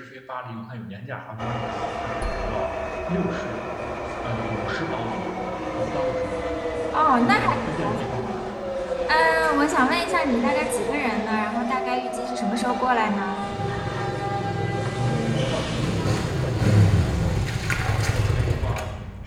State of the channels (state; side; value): identical; both; correlation 1.00